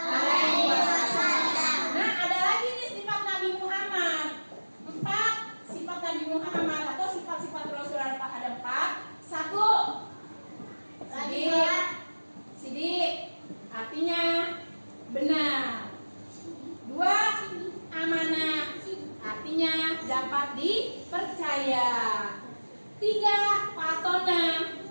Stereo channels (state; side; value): inverted; both; correlation -1.00